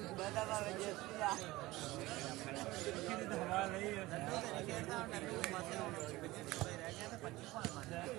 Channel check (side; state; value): left; quieter; 19.0 dB